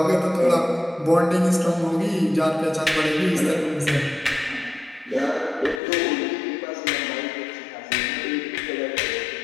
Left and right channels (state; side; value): drops out; right; at 5.8 s